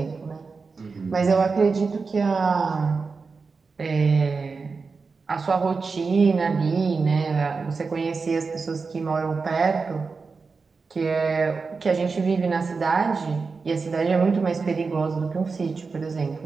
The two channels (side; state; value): left; quieter; 4.6 dB